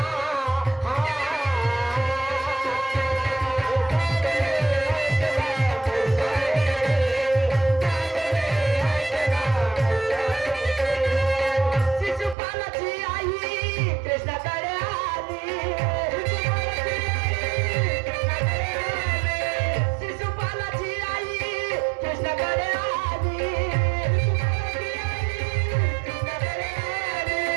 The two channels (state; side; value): drops out; left; at 12.4 s